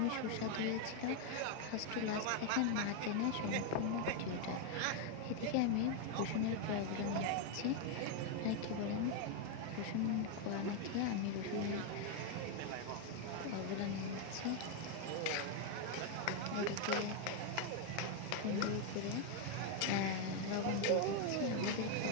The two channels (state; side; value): different; both; correlation 0.01